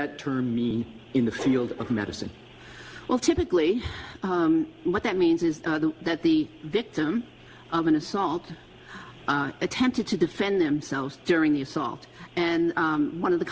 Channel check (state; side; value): identical; both; correlation 1.00